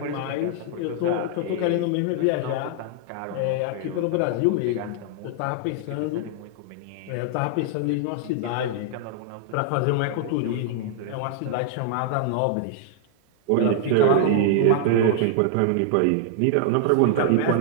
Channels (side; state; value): both; different; correlation -0.01